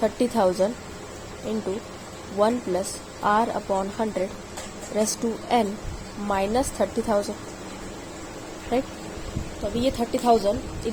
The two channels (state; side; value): identical; both; correlation 1.00